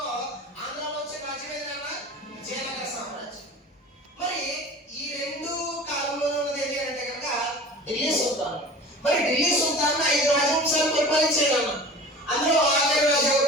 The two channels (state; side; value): normal; both; correlation 0.39